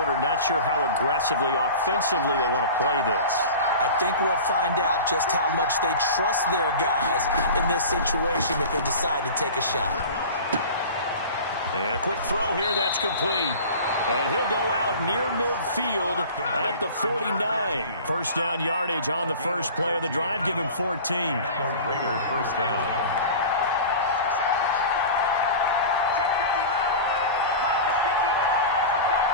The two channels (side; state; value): both; inverted; correlation -0.36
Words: not sure how aggressively, offensively they want to play this. I think we'll find out just how much they trust their guys in this situation if they decide to take a shot. And a quick throw here, that's complete. And he'll go out near midfield at the 49. First down yardage on the first play of the drive. Give him 14. The Raider first down.